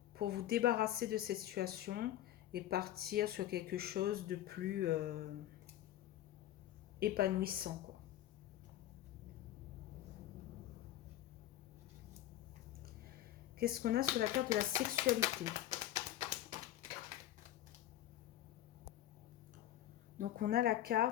pour vous débarrasser de cette situation et partir sur quelque chose de plus épanouissant, quoi. Qu'est-ce qu'on a sur la carte de la sexualité? Donc, on a la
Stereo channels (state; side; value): quieter; right; 13.1 dB